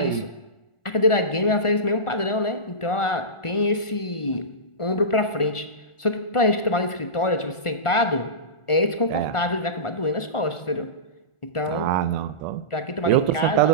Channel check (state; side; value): late; right; 1.4 ms